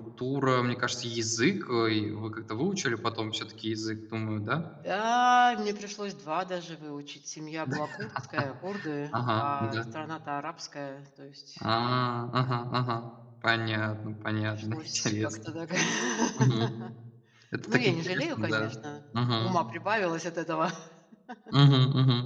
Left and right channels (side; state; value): both; identical; correlation 1.00